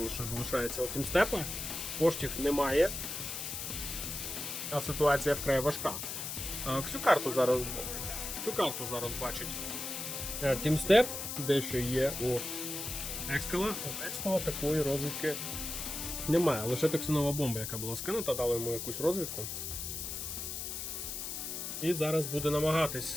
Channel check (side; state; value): left; noise; hiss, 5 dB below the sound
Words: залишається у тімстепа, коштів немає, а ситуація вкрай важка. Всю карту зараз бачить тімстеп, дещо є у Екскала. У Екскала такої розвідки немає, лише токсинова бомба, яка була скинута, дала йому якусь розвідку. І зараз буде